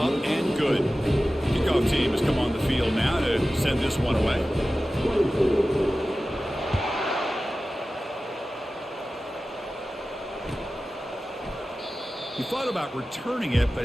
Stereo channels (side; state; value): both; normal; correlation 0.95